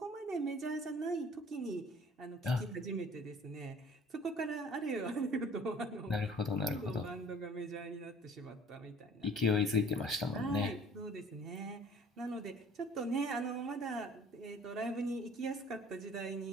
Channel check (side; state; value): both; normal; correlation 0.51